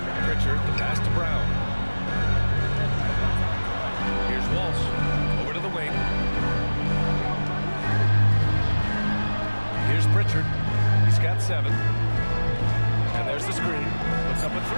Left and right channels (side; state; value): both; inverted; correlation -1.00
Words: Pritchard, the pass to Brown. Here's Walsh. Over to the wing. Here's Pritchard. He's got 7. And there's the screen. Puts up a